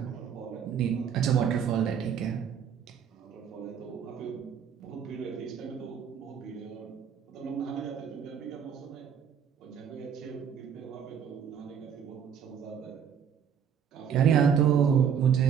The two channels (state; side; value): quieter; left; 7.8 dB